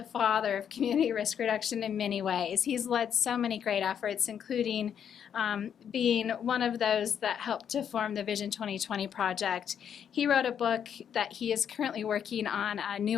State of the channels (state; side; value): quieter; right; 8.4 dB